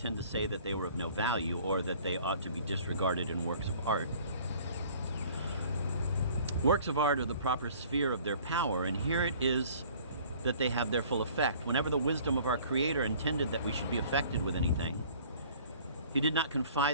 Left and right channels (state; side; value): inverted; both; correlation -0.52